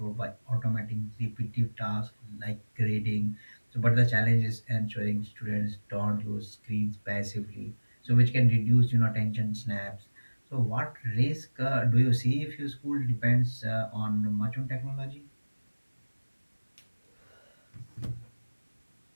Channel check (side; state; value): both; inverted; correlation -1.00